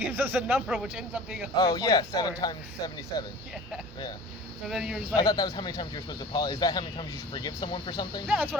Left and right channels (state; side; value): normal; both; correlation 0.41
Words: us a number which ends up being 144. Oh yeah, 7 times 77. Yeah. Yeah. So then you're just I like, thought that was how many times you're supposed to apologize. Is that how many times you should forgive someone for something? yeah, that's what